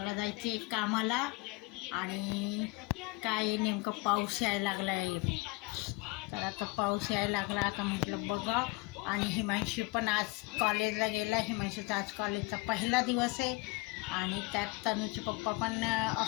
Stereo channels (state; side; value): quieter; right; 24.8 dB